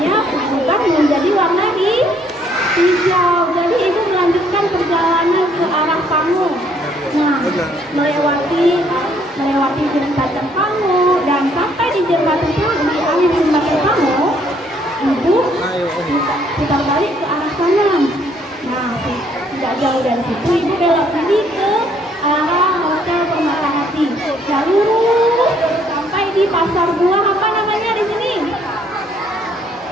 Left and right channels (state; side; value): normal; both; correlation 0.66